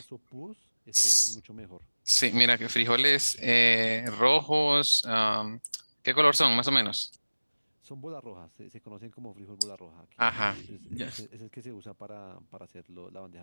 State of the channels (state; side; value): inverted; both; correlation -1.00